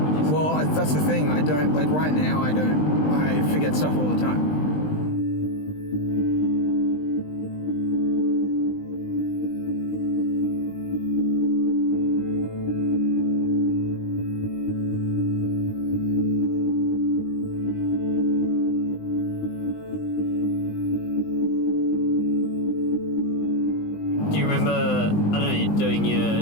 Well, that's the thing. I don't, like right now, I forget stuff all the time. Do you remember, I don't know, doing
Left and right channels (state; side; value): late; right; 20 ms